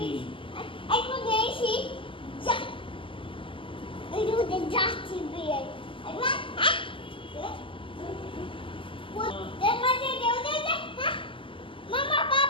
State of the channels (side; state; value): right; late; 0.25 ms